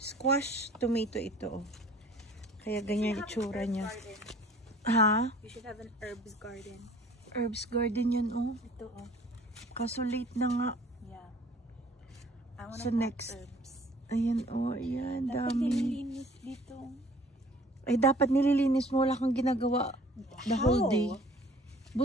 tomato ito, oh. Kaya ganyan itsura niya. Ha? You should have an herbs garden. Herbs garden yan, oh. Ito, oh. Kaso late na nga. Yeah. I wanna So plant next. herbs. Ayan, oh, ayan, Dapat dami. nililinis dito. Ay, dapat nililinis mo. Wala kang ginagawa the whole day.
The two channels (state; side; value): normal; both; correlation 0.52